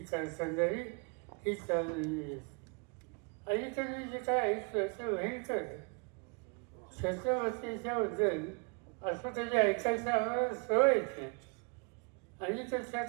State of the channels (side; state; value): left; quieter; 34.4 dB